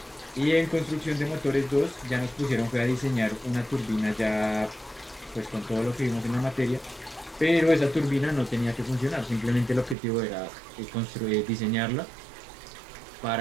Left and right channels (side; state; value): left; drops out; at 10.0 s